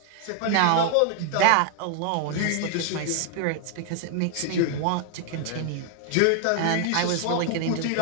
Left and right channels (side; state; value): both; different; correlation 0.00